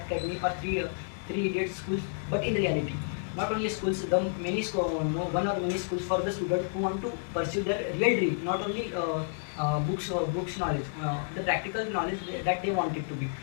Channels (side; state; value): right; silent; digital silence